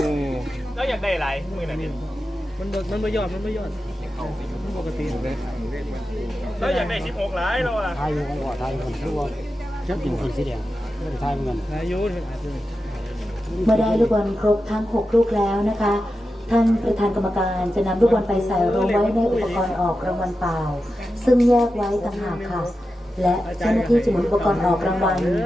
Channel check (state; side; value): normal; both; correlation 0.91